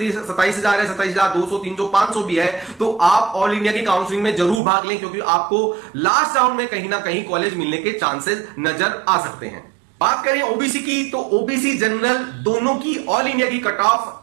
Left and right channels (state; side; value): drops out; left; at 4.6 s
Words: है, 27,200, 300, 500 भी है, तो आप ऑल इंडिया की काउंसलिंग में जरूर भाग लें, क्योंकि आपको लास्ट राउंड में कहीं ना कहीं कॉलेज मिलने के चांसेस नजर आ सकते हैं। बात करें ओबीसी की, तो ओबीसी जनरल दोनों की ऑल इंडिया की कट ऑफ